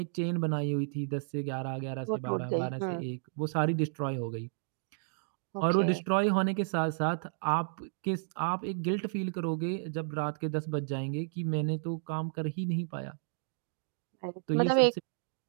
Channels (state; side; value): silent; left; digital silence